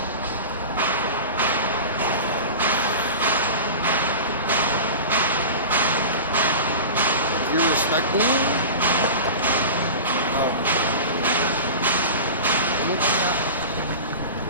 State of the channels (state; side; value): inverted; both; correlation -0.31